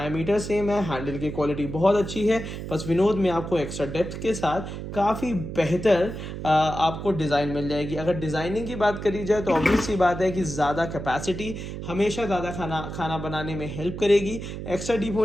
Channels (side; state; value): right; noise; hum, 8 dB below the sound